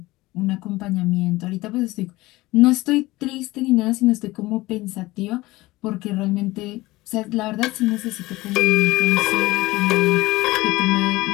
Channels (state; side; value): quieter; right; 19.6 dB